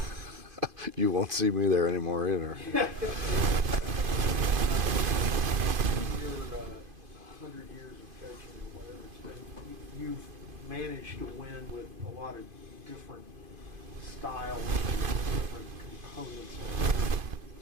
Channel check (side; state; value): left; late; 2.5 ms